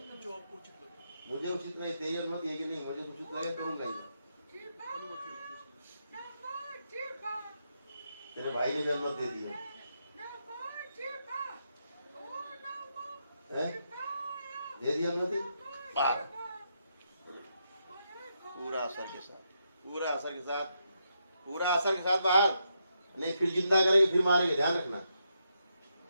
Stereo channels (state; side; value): inverted; both; correlation -0.81